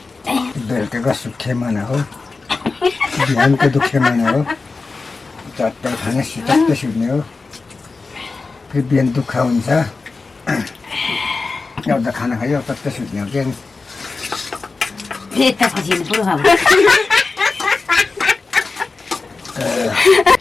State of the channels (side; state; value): right; quieter; 4.0 dB